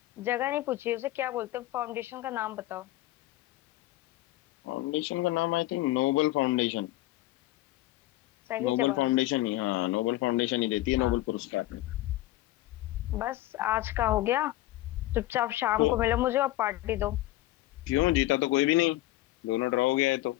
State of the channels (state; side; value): quieter; right; 16.5 dB